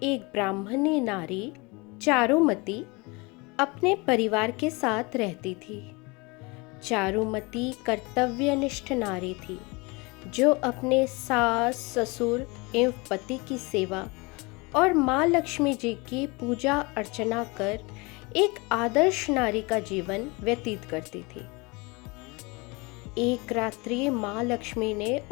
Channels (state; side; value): quieter; right; 26.6 dB